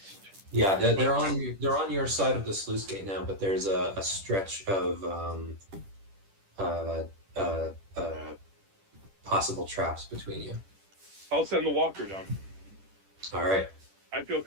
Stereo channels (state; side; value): late; left; 10 ms